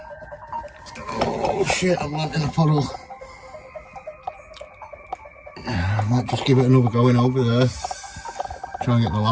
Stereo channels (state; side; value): identical; both; correlation 1.00